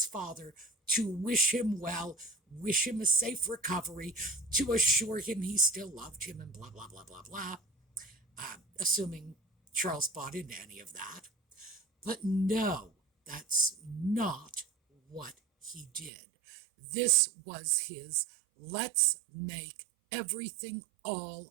father to wish him well, wish him a safe recovery, to assure him he still loved him and blah, blah, blah, blah, blah, assuming Charles bought into any of that. But no, that's not what he did. This was his let's make everything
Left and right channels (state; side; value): drops out; left; at 16.1 s